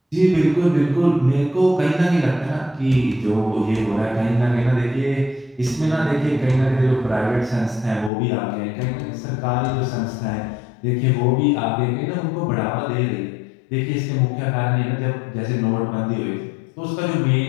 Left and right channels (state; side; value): drops out; right; at 8.1 s